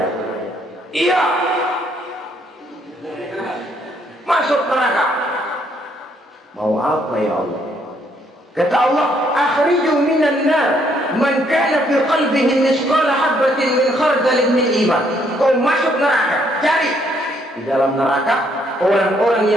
iya, masuk neraka. Mau apa ya Allah? Kata Allah, akhriju minan nar man kana fi qalbihi misqala habatin min khardalin min iman. Kau masuk neraka, cari di dalam neraka orang-orang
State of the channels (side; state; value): both; normal; correlation 0.70